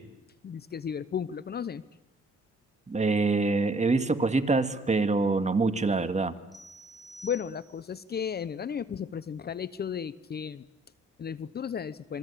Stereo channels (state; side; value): normal; both; correlation 0.60